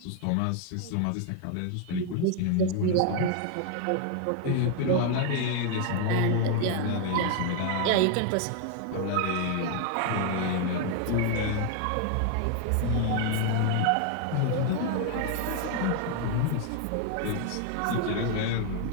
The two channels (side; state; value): both; different; correlation 0.00